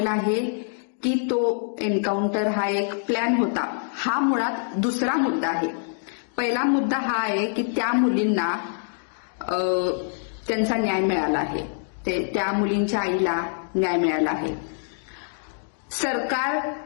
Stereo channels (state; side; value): silent; right; digital silence